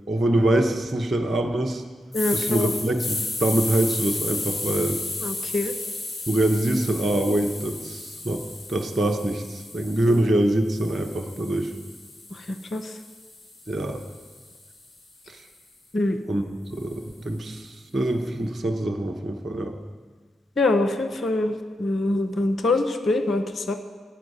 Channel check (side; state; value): both; normal; correlation 0.86